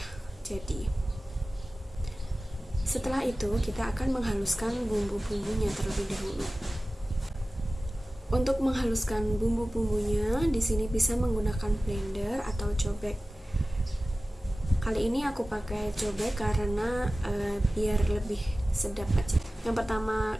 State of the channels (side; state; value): both; normal; correlation 0.96